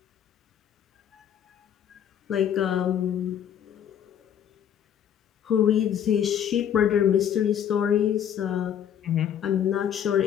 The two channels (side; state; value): right; quieter; 9.4 dB